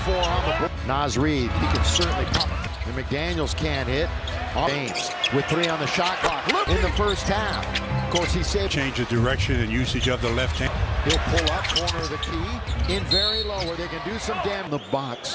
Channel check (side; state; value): both; identical; correlation 1.00